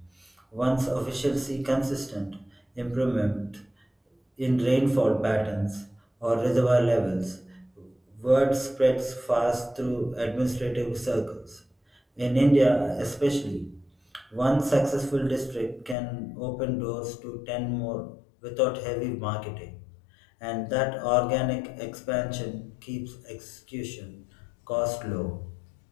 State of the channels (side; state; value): right; drops out; at 16.0 s